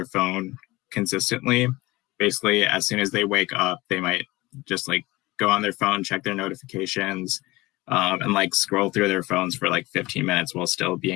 phone consistently. Basically, as soon as they wake up, they might just like go on their phone, check their notifications, and like scroll through their phones for like 15 minutes while still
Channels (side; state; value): right; quieter; 20.7 dB